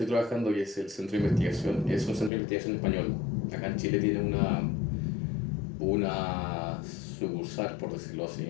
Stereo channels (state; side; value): drops out; right; at 2.3 s